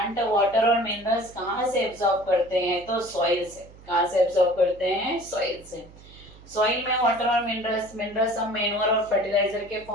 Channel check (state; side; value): noise; right; hum, 21 dB below the sound